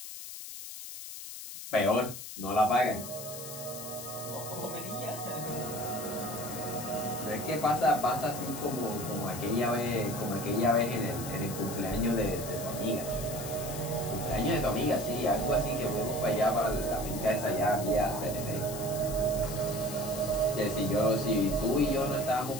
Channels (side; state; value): left; noise; hiss, 10 dB below the sound